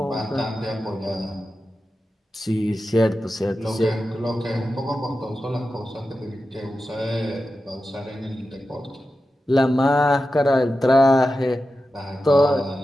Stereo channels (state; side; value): normal; both; correlation 0.92